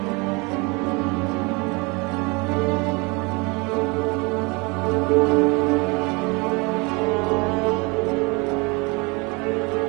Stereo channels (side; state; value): left; quieter; 28.1 dB